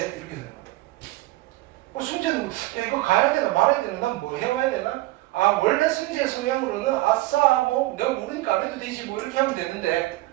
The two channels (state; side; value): quieter; left; 18.9 dB